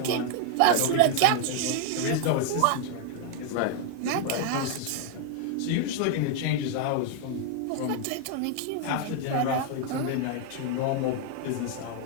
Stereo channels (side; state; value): both; different; correlation 0.00